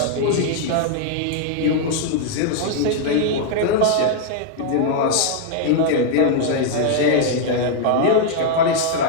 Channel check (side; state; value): both; different; correlation 0.00